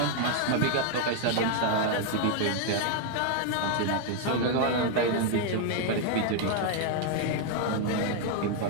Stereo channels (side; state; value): both; different; correlation 0.00